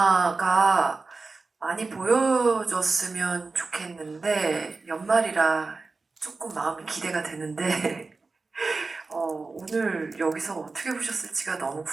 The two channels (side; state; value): left; quieter; 3.9 dB